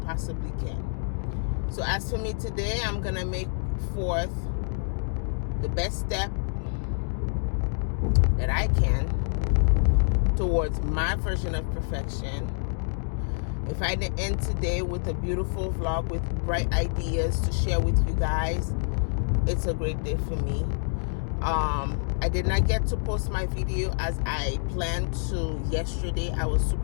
can. So as for me today, I'm gonna make forth the best step that I can towards my version of perfection. If I didn't end today with a beautiful vlog with bright ideas to share with you guys, it's a great day for me. I did not get to post my video as I planned to yesterday. I was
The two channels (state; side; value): silent; right; digital silence